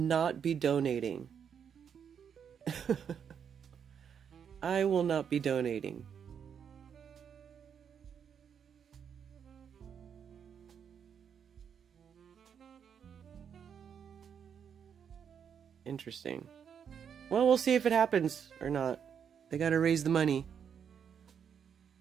be donating. I will not be donating. Interesting. Well, we'll see if it happens or not. They gotta raise the money.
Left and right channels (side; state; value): left; quieter; 7.7 dB